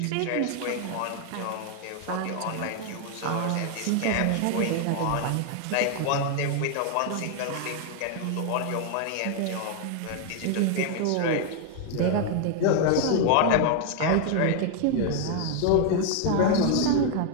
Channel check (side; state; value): both; different; correlation 0.00